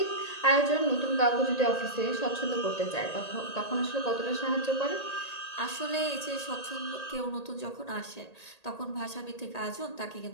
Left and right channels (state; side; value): late; right; 1.8 ms